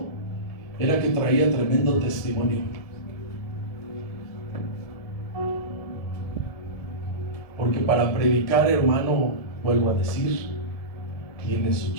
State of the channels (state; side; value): late; right; 1.7 ms